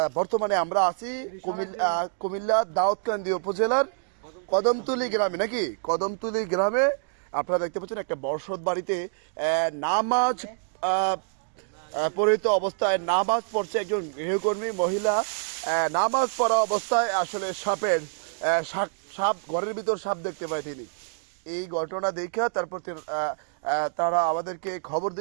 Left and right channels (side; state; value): left; silent; digital silence